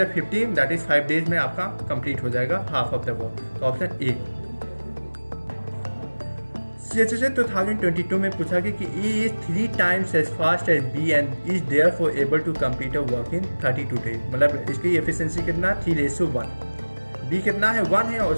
15 दैट इज 5 डेज में आपका कंप्लीट हो जाएगा हाफ ऑफ द वर्क। तो ऑप्शन ए। CHSL 2022 में पूछा कि A is 3 times as fast as B and is therefore able to complete a work in 32 days। मतलब इसकी एफिशिएंसी कितना 3:1, B कितना है 1 है और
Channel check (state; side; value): inverted; both; correlation -1.00